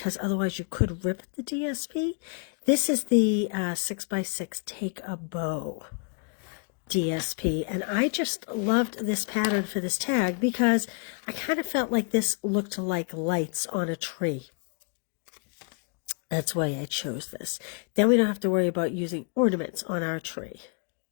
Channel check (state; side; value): quieter; right; 39.2 dB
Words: otherwise you could rip the DSP. This is the 6x6 Take a Bow DSP, and I just loved this pattern for this tag because I kind of felt like this looked like lights on a tree. That's why I chose this. Then we don't have to worry about using ornaments on our tree.